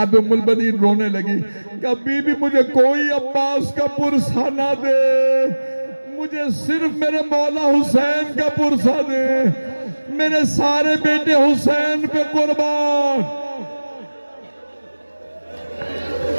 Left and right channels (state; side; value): inverted; both; correlation -1.00